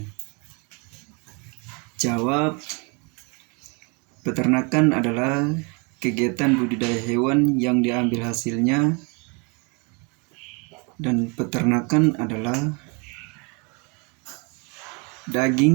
Jawab, peternakan adalah kegiatan budidaya hewan yang diambil hasilnya, dan peternakan adalah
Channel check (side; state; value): left; quieter; 31.9 dB